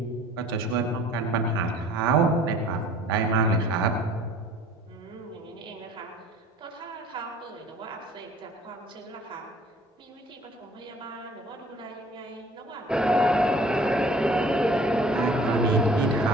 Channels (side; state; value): both; normal; correlation 0.51